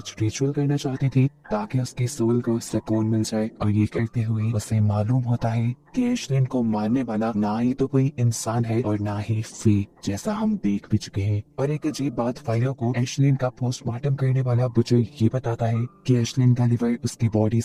रिचुअल करना चाहती थी ताकि उसकी सोल को सुकून मिल जाए और ये करते हुए उसे मालूम होता है कि एश्लिन को मारने वाला ना ही तो कोई इंसान है और ना ही फी जैसा हम देख भी चुके हैं। और एक अजीब बात फाइलो को एश्लिन का पोस्टमार्टम करने वाला बुचर ये बताता है कि एश्लिन का लिवर उसकी बॉडी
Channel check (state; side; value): identical; both; correlation 1.00